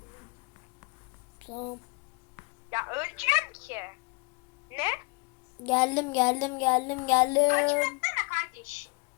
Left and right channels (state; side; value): quieter; right; 30.6 dB